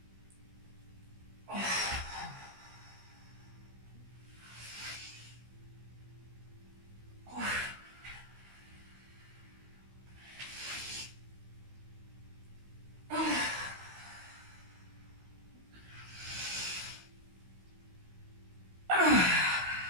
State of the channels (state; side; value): late; left; 16 ms